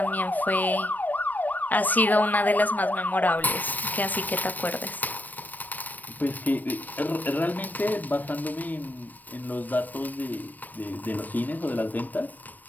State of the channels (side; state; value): right; late; 0.086 ms